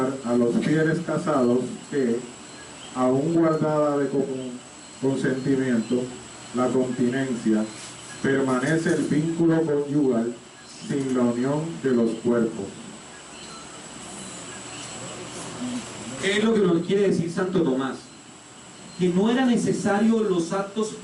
a los fieles casados que, aún guardada de consentimiento, la continencia, permanece el vínculo conyugal sin la unión de los cuerpos. ¿Qué es lo que nos quiere decir Santo Tomás? Que no era necesario los actos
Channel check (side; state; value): both; identical; correlation 1.00